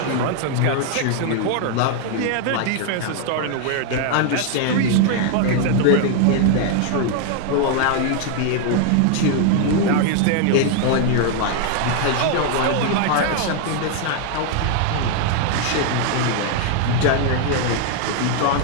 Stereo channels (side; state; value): both; different; correlation 0.00